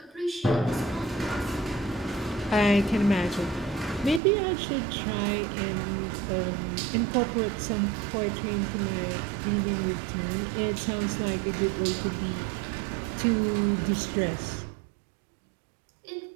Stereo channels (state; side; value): drops out; left; at 4.2 s